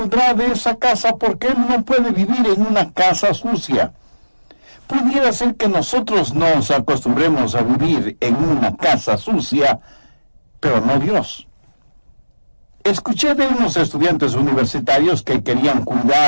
de esa casa porque Él no puede vivir en una casa sucia. Pudiera ser que nosotros nos acostumbremos a vivir en una casa sucia, pero no Dios. Escuché de unos estudiantes universitarios que querían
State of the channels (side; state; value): both; inverted; correlation -1.00